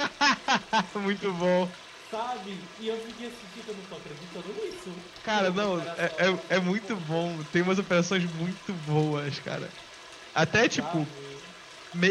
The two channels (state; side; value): identical; both; correlation 1.00